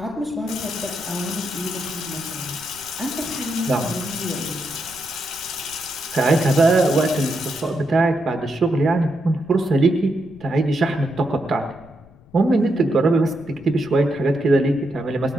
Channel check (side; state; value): left; noise; rumble, 25 dB below the sound